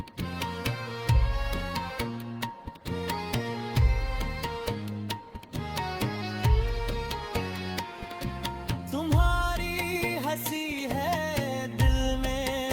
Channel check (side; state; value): both; identical; correlation 1.00